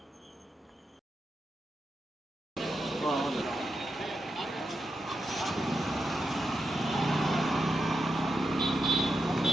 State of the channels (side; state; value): both; normal; correlation 0.87